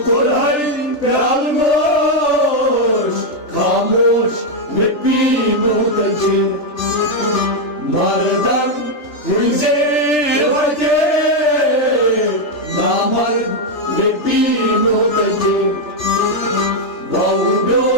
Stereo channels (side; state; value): right; late; 3.4 ms